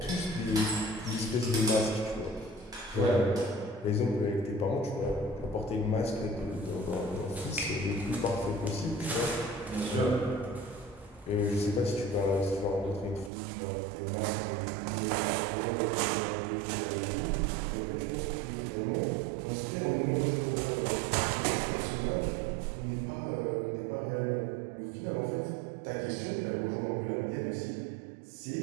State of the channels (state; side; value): drops out; left; at 13.3 s